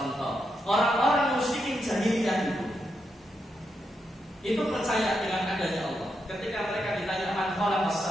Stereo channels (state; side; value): normal; both; correlation 0.83